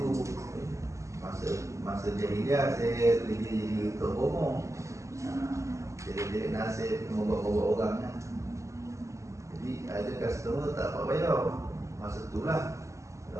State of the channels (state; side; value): late; left; 0.15 ms